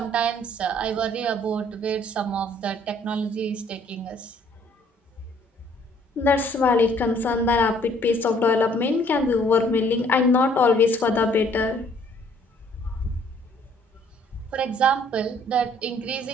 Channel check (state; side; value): normal; both; correlation 0.61